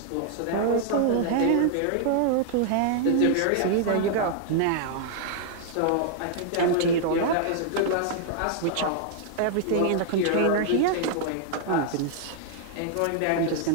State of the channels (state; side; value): different; both; correlation -0.01